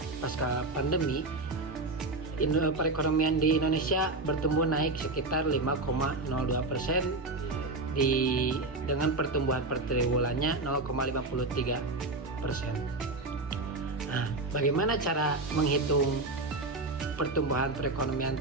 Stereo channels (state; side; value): quieter; left; 3.1 dB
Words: pasca pandemi, perekonomian di Indonesia bertumbuh naik sekitar 5,02% dengan pertumbuhan per triwulannya 0,53%. Nah, bagaimana cara menghitung pertumbuhan perekonomian